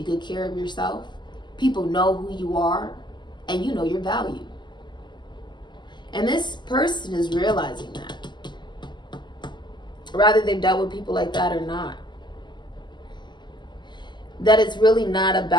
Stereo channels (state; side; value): late; right; 0.21 ms